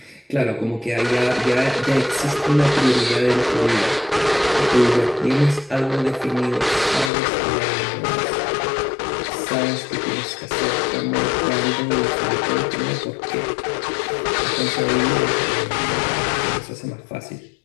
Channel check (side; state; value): right; drops out; at 7.1 s